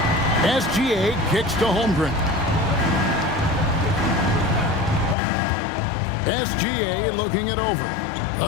SGA kicks to Holmgren. SGA looking it over.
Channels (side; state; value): right; drops out; at 5.2 s